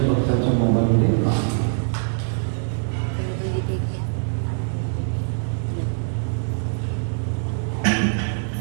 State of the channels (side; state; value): left; silent; digital silence